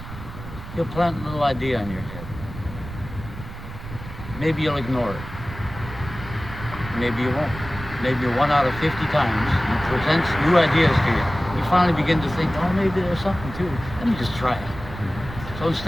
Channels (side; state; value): right; noise; rumble, 12 dB below the sound